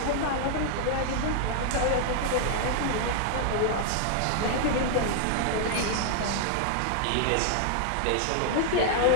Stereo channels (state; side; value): different; both; correlation -0.01